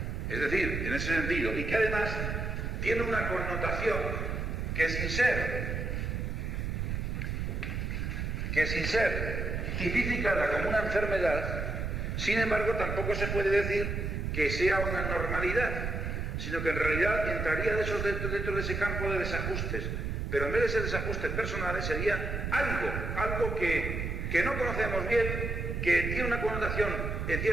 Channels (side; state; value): right; noise; rumble, 2 dB below the sound